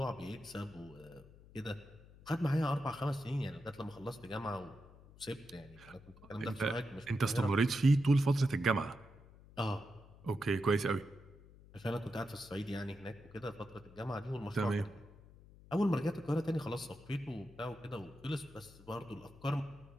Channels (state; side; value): noise; left; hum, 21 dB below the sound